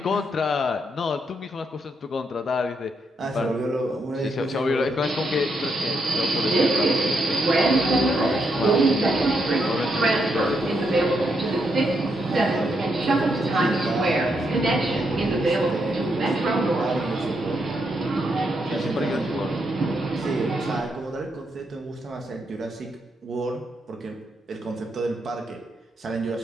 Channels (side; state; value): both; normal; correlation 0.79